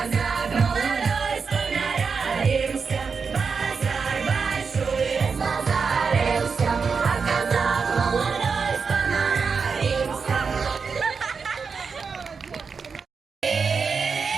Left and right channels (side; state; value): left; quieter; 5.4 dB